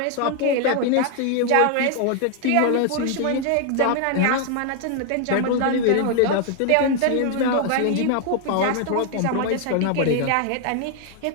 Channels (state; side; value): different; both; correlation 0.00